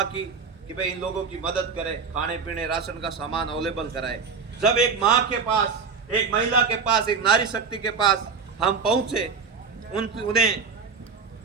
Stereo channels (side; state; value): left; quieter; 5.4 dB